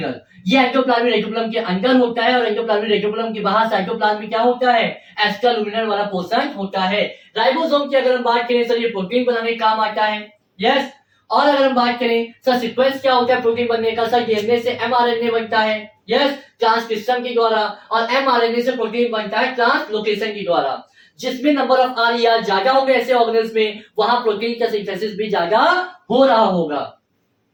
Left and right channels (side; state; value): both; identical; correlation 1.00